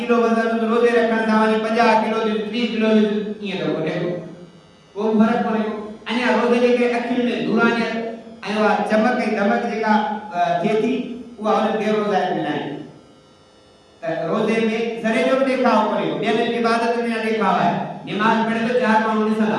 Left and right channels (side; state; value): both; identical; correlation 1.00